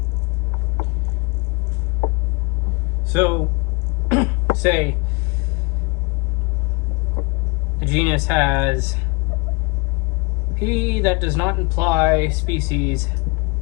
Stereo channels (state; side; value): quieter; right; 28.2 dB